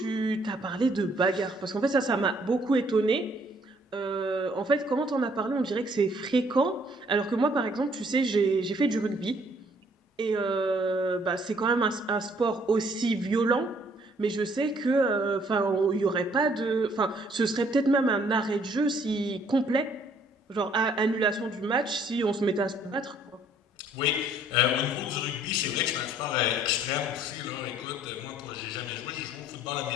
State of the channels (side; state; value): both; normal; correlation 0.62